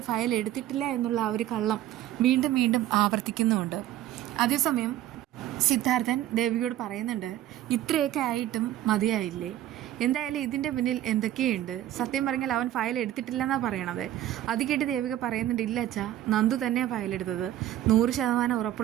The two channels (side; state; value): left; quieter; 13.0 dB